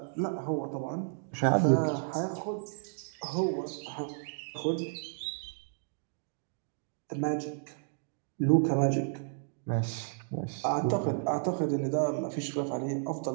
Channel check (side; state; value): left; silent; digital silence